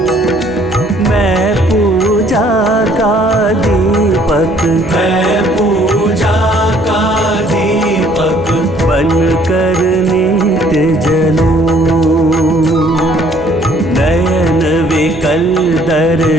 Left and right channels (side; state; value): right; noise; hum, 19 dB below the sound